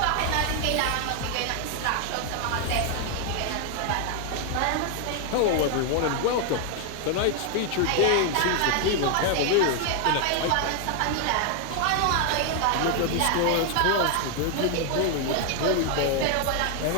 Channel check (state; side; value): different; both; correlation 0.00